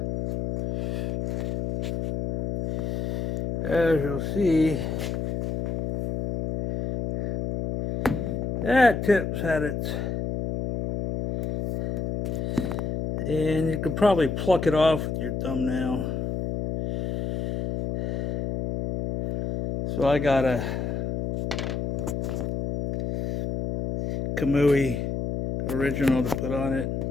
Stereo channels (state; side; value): noise; left; hum, 2 dB below the sound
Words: As you'll see, that tip's had its, and you could probably pluck it off with your thumbnail. So I got a Kamui original to put on it.